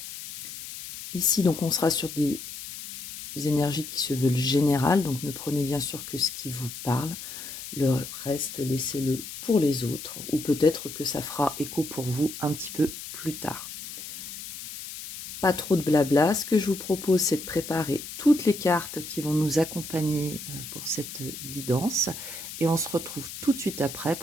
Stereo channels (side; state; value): left; noise; hiss, 10 dB below the sound